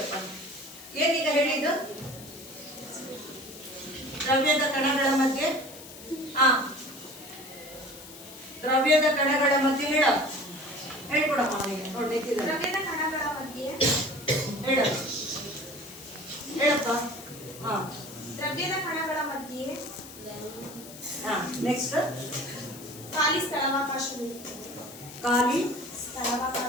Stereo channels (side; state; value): left; noise; hiss, 16 dB below the sound